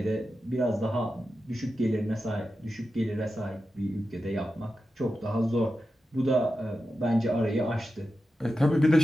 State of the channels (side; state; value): both; normal; correlation 0.91